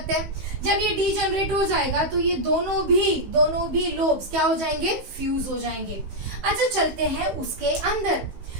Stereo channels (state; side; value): late; left; 16 ms